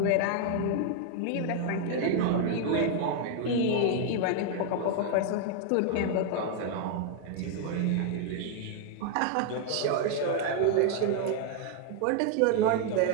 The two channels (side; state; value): both; different; correlation 0.00